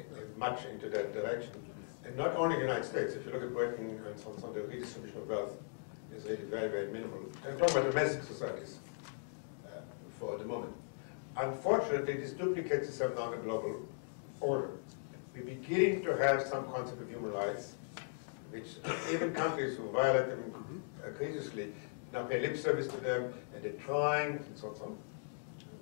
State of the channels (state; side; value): silent; right; digital silence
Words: much into that direction. And not only in the United States. If you look at Britain and so on, the redistribution of wealth is really very, very minimal. I'm talking about domestic societies for the moment. Unfortunately, this duplicates itself now in the global order. We're beginning to have some concept of human rights, which even countries who violate them egregiously now pay lip service to them, and they're trying, and so on.